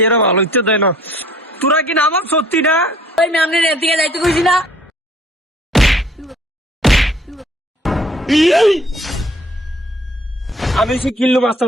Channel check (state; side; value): normal; both; correlation 0.56